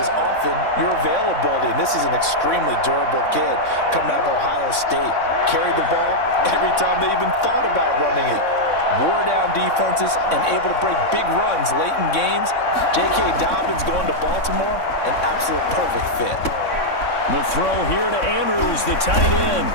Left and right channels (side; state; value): right; late; 3.6 ms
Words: is often your availability. And this is an extremely durable kid coming out of Ohio State. Carried the ball every time they even thought about running it. Wore down defenses and able to break big runs late in games. J.K. Dobbins going to Baltimore, an absolute perfect fit. The throw here to Andrews, the tight end.